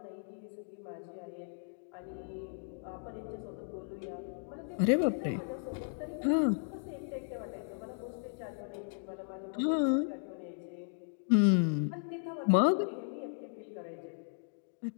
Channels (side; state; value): right; silent; digital silence